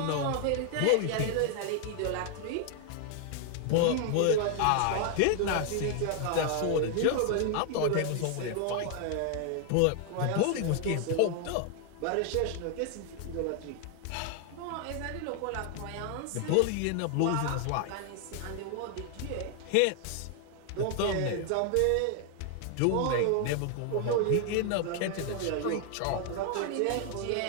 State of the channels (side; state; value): both; different; correlation 0.00